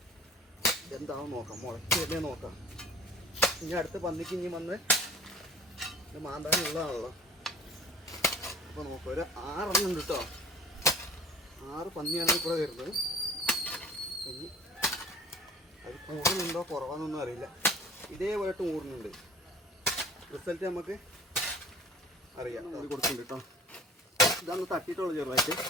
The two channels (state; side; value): normal; both; correlation 0.45